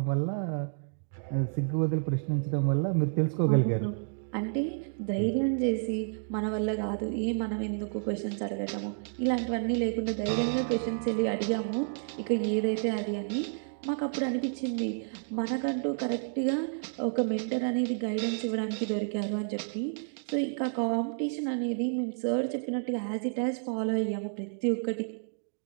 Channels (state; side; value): silent; left; digital silence